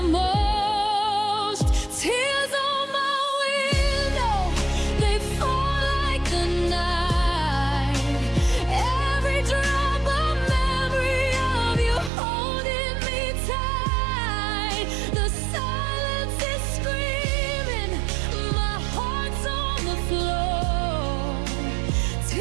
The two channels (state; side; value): drops out; left; at 12.1 s